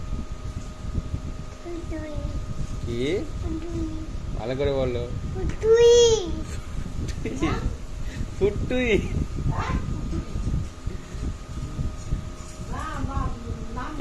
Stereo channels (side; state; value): both; identical; correlation 1.00